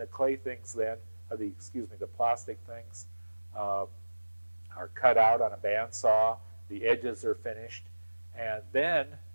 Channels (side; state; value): both; inverted; correlation -1.00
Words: clay things then, the plastic things, are cut out on a bandsaw. The edges are finished, and then,